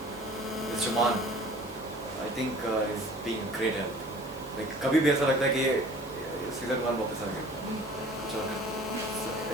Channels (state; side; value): normal; both; correlation 0.48